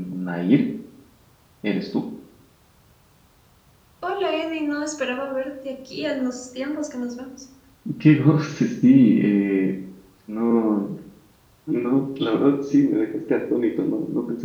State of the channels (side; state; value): both; identical; correlation 1.00